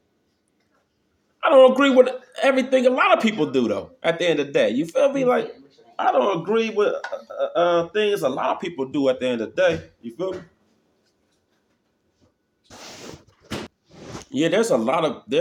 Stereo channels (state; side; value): identical; both; correlation 1.00